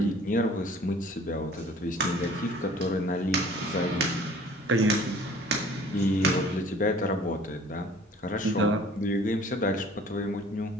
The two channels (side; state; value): both; normal; correlation 0.51